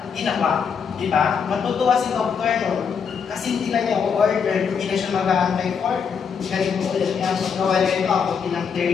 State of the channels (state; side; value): quieter; right; 6.5 dB